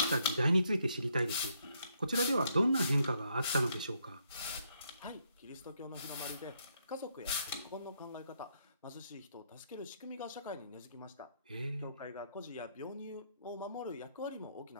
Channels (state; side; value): inverted; both; correlation -0.74